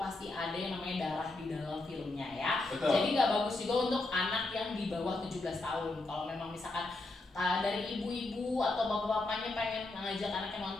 ada yang namanya darah di dalam filmnya ya. Betul. Jadi nggak bagus juga untuk anak yang di bawah 17 tahun. Kalau memang misalkan dari ibu-ibu atau bapak-bapaknya pengen ngajak anaknya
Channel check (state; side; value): quieter; right; 3.0 dB